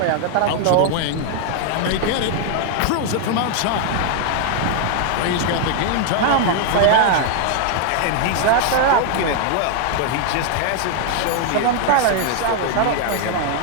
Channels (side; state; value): both; different; correlation 0.00